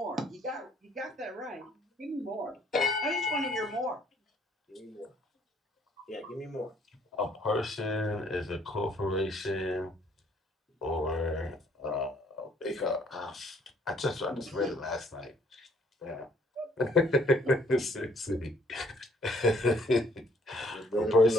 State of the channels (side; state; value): both; normal; correlation 0.63